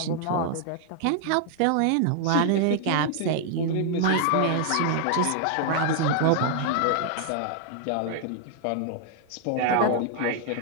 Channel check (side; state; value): both; different; correlation 0.00